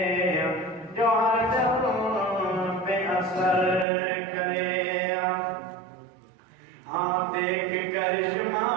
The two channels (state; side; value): drops out; left; at 3.9 s